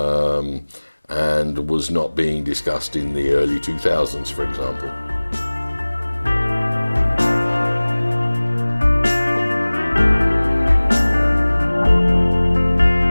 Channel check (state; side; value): inverted; both; correlation -1.00